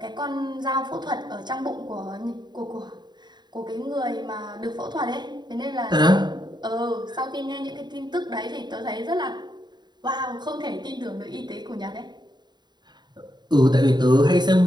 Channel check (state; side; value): late; left; 0.21 ms